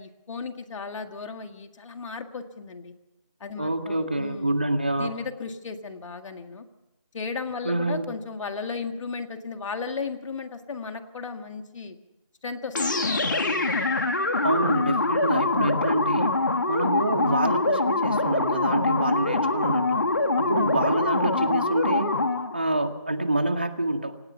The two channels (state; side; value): inverted; both; correlation -0.59